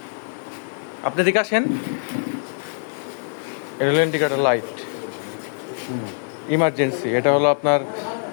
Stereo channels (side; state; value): right; silent; digital silence